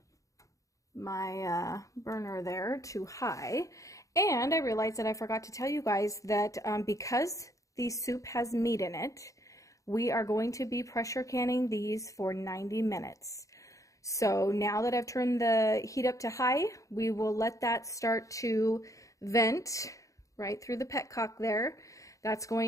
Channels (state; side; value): late; right; 0.16 ms